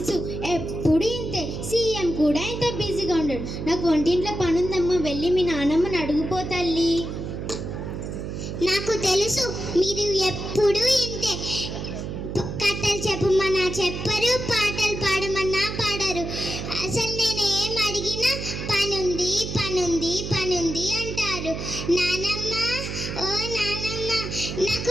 ఎప్పుడు ఇంతే. సీఎం కూడా ఇంత బిజీగా ఉండడు. నాకు వంటింట్లో పనుందమ్మా, వెళ్ళి మీ నాన్నమ్మని అడుగుపో తల్లి. నాకు తెలుసు, మీరు ఎప్పుడు ఇంతే. కథలు చెప్పమన్నా చెప్పరు, పాటలు పాడమన్నా పాడరు. అసలు నేను ఏం అడిగినా పనుంది పనుంది పనుంది అంటారు. నానమ్మ, ఓ నానమ్మ,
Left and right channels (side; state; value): right; noise; hum, 6 dB below the sound